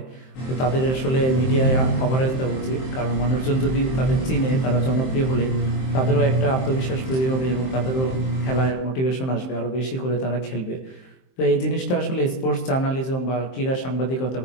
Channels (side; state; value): right; late; 23 ms